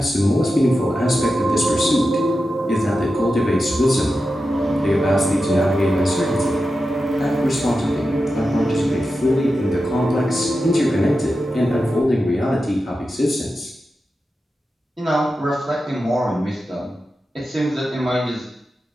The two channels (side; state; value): both; normal; correlation 0.91